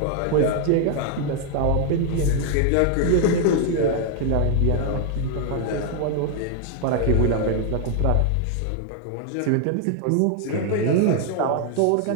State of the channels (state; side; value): different; both; correlation 0.00